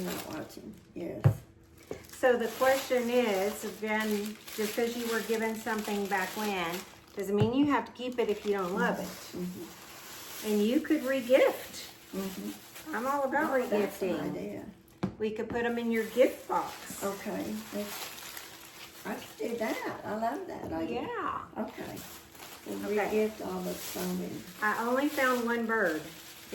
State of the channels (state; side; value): identical; both; correlation 1.00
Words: not watching. Yes. So the question is, again, just because you were given something back when, doesn't mean you have to keep it if you don't love it. And you could regift. I'm all about That's an regifting. idea. We could put them in your gift box. Okay. I could do that. I love that idea. Yeah. Okay. We'll Okay. re-gift all the snowmen. I only found one bird